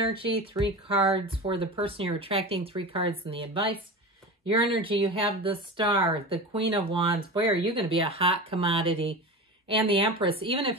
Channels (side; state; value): both; normal; correlation 0.28